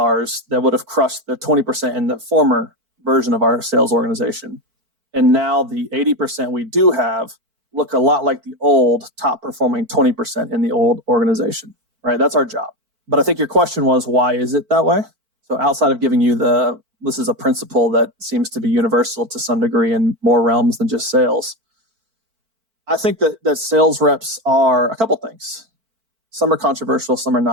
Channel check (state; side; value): late; left; 4.5 ms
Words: that would have crushed the 20% in the former version of our sales organization. And now the 80% we do have look a lot like the old top performing 20% in the old organization, right? That's our job. But I think your question was, why is it that way? So outside of giving you this is a principle that seems to be universal to some degree in more realms than just sales. I think that sales reps are a couple things. Some are controversial, some are